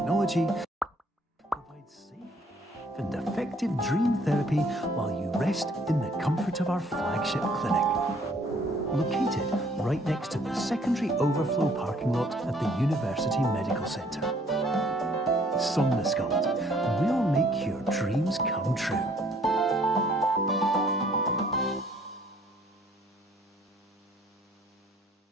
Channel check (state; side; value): normal; both; correlation 0.61